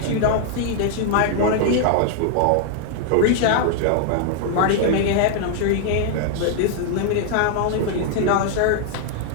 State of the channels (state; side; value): different; both; correlation 0.00